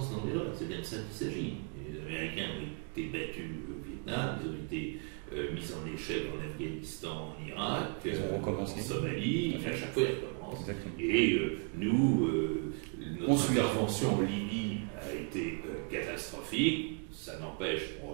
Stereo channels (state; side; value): quieter; left; 38.2 dB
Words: dans l'erreur. C'est bien de ça qu'il s'agit. Les Américains ont été battus au Vietnam, ils ont été mis en échec en Afghanistan, en Irak, en Somalie, et à chaque fois ils recommencent. Exactement. Et nous, notre intervention en Libye a été catastrophique. Ça n'empêche qu'on